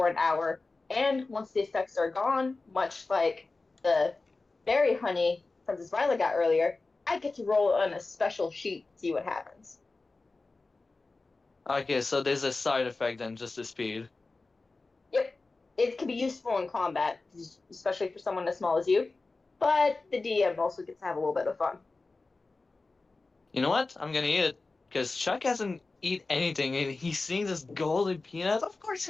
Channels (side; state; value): right; quieter; 3.6 dB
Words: an hour, and once the effects are gone, much like the berry honey Princess Violet got earlier, I get to roll on a special sheet to see what happens. Okay, so there's a side effect than just the speed. Yep, it can be useful in combat, especially for someone as small as you. But the DM also gets to have a little bit of fun. You know what? I'm gonna eat it because Chuck hasn't eat anything, and he's seeing this golden peanut. Of course,